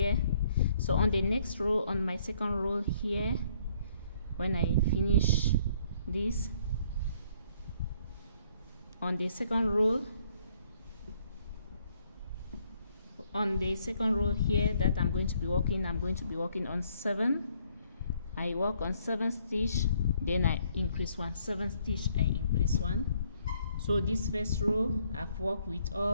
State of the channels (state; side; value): inverted; both; correlation -0.66